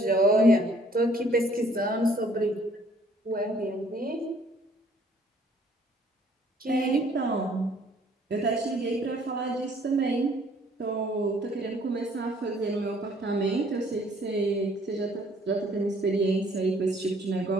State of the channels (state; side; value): normal; both; correlation 0.60